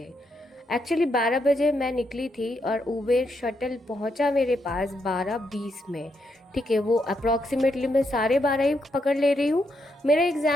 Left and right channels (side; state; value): both; normal; correlation 0.79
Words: एक्चुअली 12 बजे मैं निकली थी और उबेर शटल पहुँचा मेरे पास 12:20 में। ठीक है, वो अप्रॉक्सीमेटली मैं 12:30 ही पकड़ ले रही हूँ। मेरा